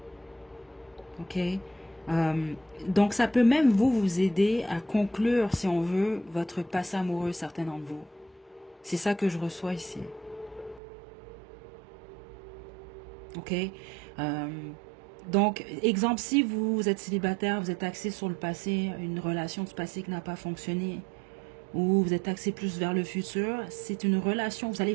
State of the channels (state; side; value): drops out; left; at 10.8 s